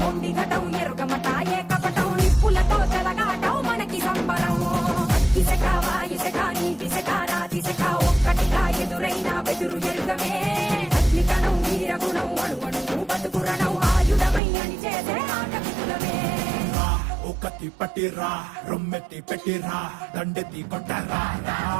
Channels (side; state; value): left; drops out; at 14.4 s